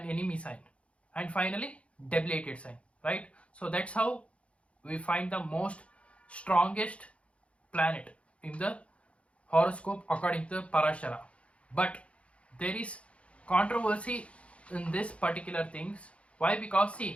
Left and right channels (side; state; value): right; late; 0.062 ms